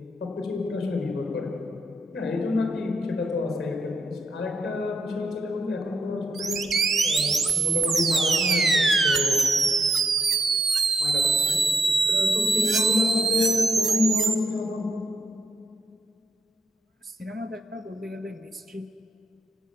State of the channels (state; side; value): normal; both; correlation 0.79